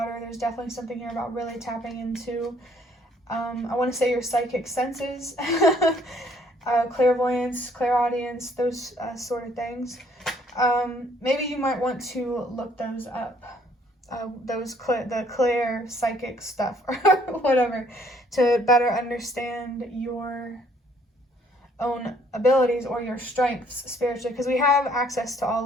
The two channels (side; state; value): both; normal; correlation 0.63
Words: There's definitely something here about really tapping into, I want to say, your psychic senses, clairvoyance, clairaudience, those sort of things. Maybe you might want to look those up. The clear psychic stuff or whatever, to better understand your own abilities or your strengths spiritually, because we have access to